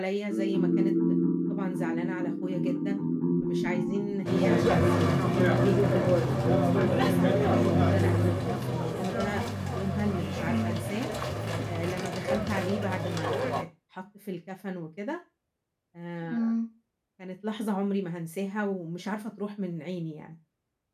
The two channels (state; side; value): identical; both; correlation 1.00